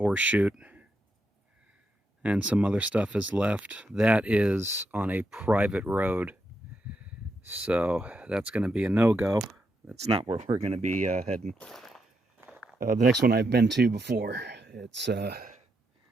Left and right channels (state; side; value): normal; both; correlation 0.82